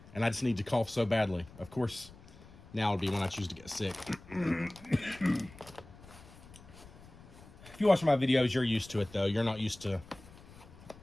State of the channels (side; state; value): left; noise; rumble, 20 dB below the sound